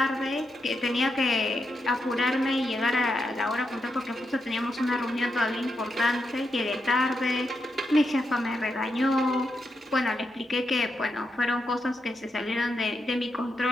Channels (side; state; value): both; normal; correlation 0.84